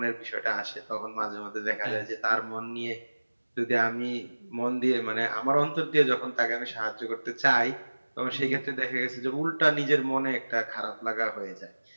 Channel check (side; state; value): both; inverted; correlation -1.00